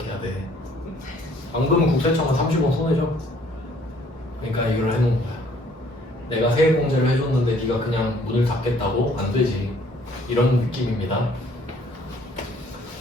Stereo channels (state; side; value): normal; both; correlation 0.60